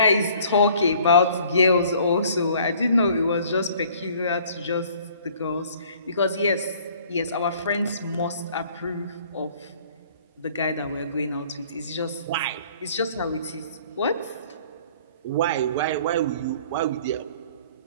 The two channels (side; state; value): both; inverted; correlation -0.55